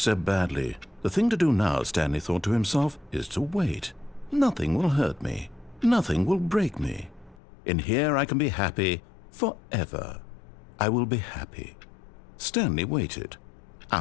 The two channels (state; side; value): drops out; right; at 7.4 s